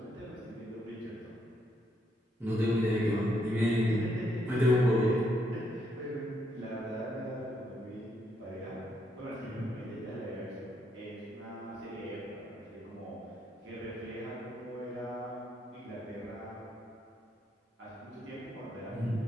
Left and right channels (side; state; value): both; normal; correlation 0.75